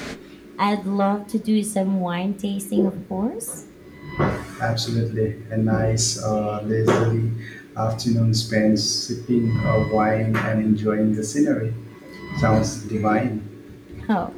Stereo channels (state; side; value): identical; both; correlation 1.00